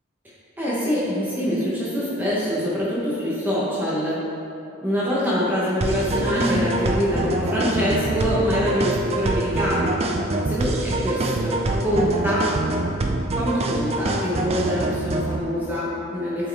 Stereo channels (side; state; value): both; normal; correlation 0.52